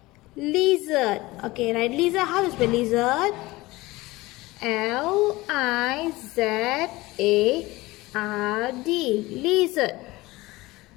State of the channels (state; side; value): quieter; right; 20.2 dB